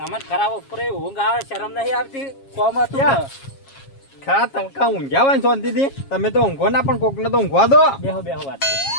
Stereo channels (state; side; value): late; right; 7.3 ms